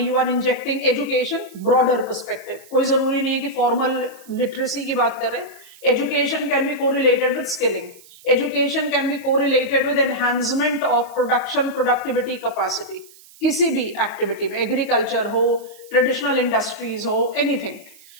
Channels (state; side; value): noise; right; hiss, 23 dB below the sound